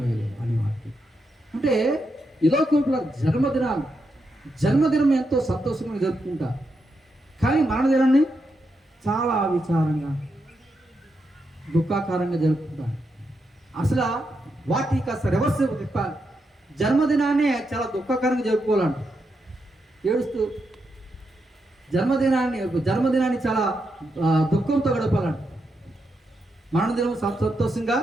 అని వాక్యం. అంటే ఇలా కూడా జన్మదినం ఎంతో సంతోషంగా జరుపుకుంటా, కానీ మరణదినాన్ని చాలా విచారంగా దుఃఖాకారంగా జరుపుకుంటాను. అసలు వాటికి కాస్త రివర్స్ తిప్పాలి. జన్మదినాన్ని చాలా దుఃఖకరంగా జరుపుకోవాలంట, ఏడుస్తూ. జన్మదినాన్ని చాలా దుఃఖంతో గడపాలంట. మరణదినం సంతోషంగా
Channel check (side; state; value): both; normal; correlation 0.83